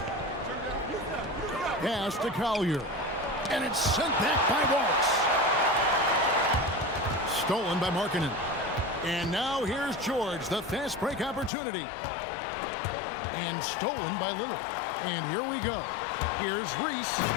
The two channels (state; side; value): drops out; right; at 11.5 s